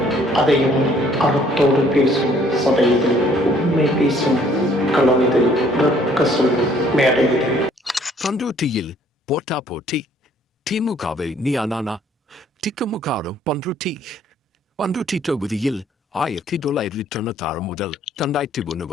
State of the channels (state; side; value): normal; both; correlation 0.61